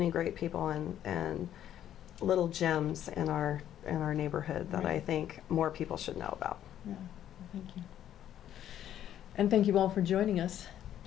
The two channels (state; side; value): quieter; right; 11.1 dB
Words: great people and little gems in our neighborhood that Right. I think more people should know about. Yeah, thank you. And thank you all for joining us.